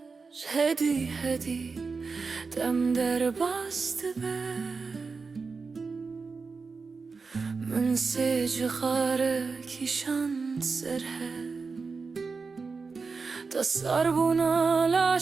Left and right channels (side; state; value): left; quieter; 4.6 dB